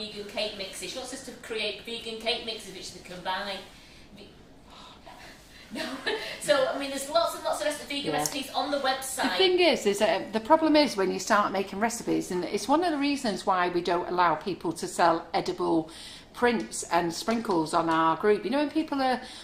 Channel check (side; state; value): both; identical; correlation 1.00